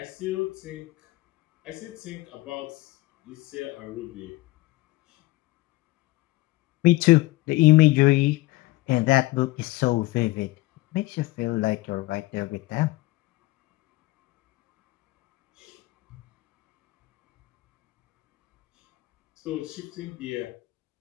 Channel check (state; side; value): quieter; right; 19.7 dB